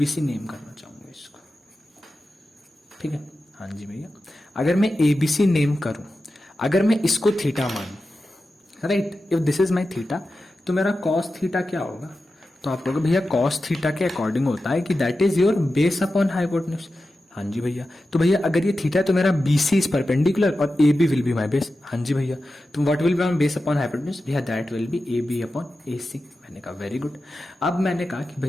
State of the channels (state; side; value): normal; both; correlation 0.92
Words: नेम करना चाहूंगा इसको, ठीक है। हाँ जी भैया, अगर मैं एबीसी नेम करूं, अगर मैं इसको थीटा मानूं, right, if this is my theta, तो मेरा कॉस थीटा क्या होगा? तो आप कहोगे भैया कॉस थीटा के अकॉर्डिंग होता है कि that is your base upon hypotenuse. हाँ जी भैया, तो भैया अगर ये थीटा है तो मेरा बीसी इज परपेंडिकुलर और A B will be my base. हाँ जी भैया, तो what will be my base upon hypotenuse? भैया that will be A B upon A C. मैंने कहा वेरी गुड। अब मैंने कहा कि